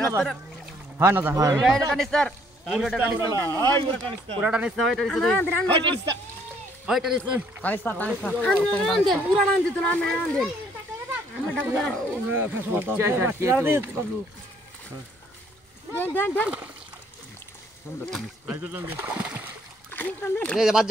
হয় এটা কানিস্টার পুরোটা কানিস্টার পুরোটা নিস্তা হয় এটা নিস্তা হয় এটা নিস্তা কানিস্টার টান দে পুরা টান দিত না আমি টান দেন আমরা ডাক দেন আইজো টান দে এই যে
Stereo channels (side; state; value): both; normal; correlation 0.64